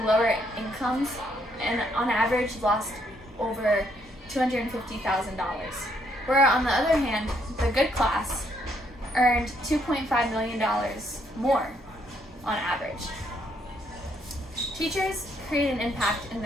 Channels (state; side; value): normal; both; correlation 0.72